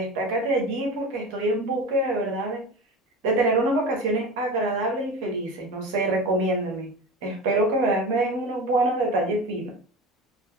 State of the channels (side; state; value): both; normal; correlation 0.30